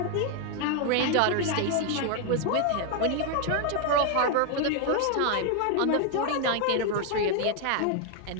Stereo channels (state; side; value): different; both; correlation 0.00